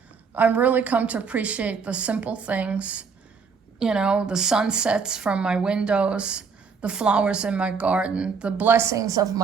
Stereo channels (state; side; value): quieter; left; 5.6 dB